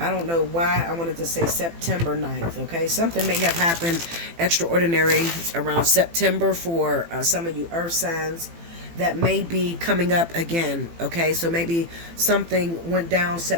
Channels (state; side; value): late; left; 18 ms